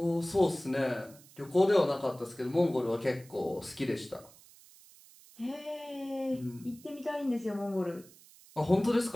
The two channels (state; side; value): noise; right; hiss, 23 dB below the sound